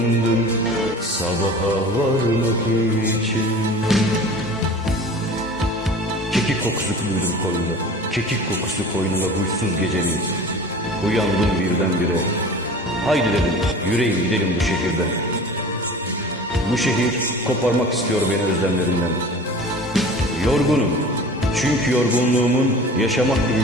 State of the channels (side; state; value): both; normal; correlation 0.40